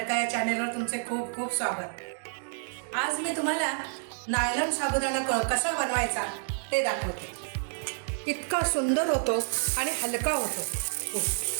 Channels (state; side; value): silent; left; digital silence